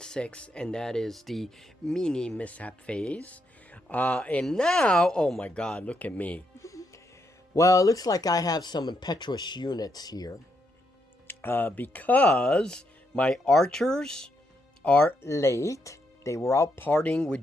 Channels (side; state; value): both; normal; correlation 0.79